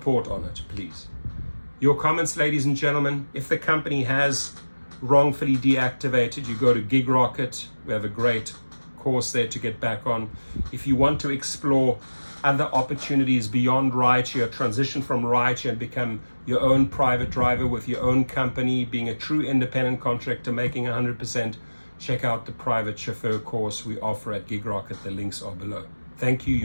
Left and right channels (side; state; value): both; inverted; correlation -1.00